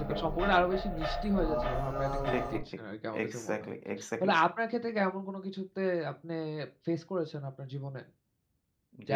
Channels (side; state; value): both; identical; correlation 1.00